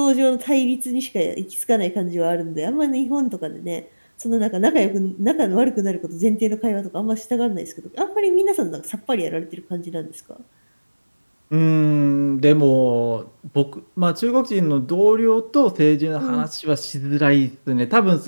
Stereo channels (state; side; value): inverted; both; correlation -1.00